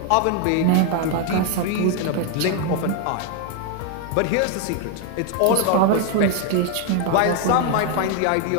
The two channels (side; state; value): both; different; correlation 0.00